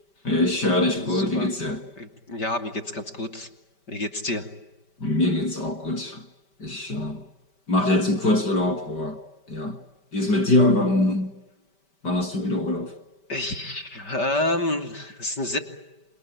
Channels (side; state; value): right; late; 5.1 ms